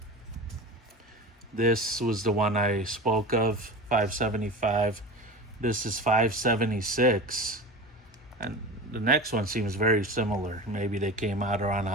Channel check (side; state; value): both; normal; correlation 0.31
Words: This was the one I spoke of, 575. This is 576. And the next one seems very similar. Maybe they came out around